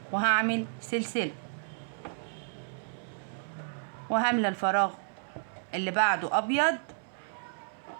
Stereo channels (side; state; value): left; silent; 57 dB below the other